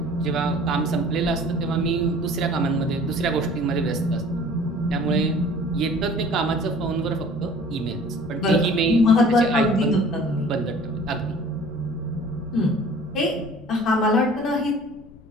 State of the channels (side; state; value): left; noise; rumble, 22 dB below the sound